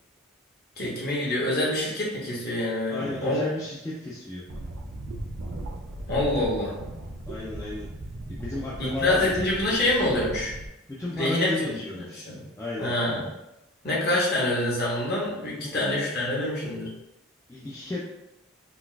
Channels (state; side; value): normal; both; correlation 0.34